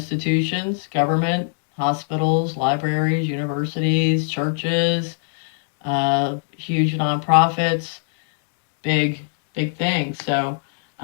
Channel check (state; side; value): silent; right; digital silence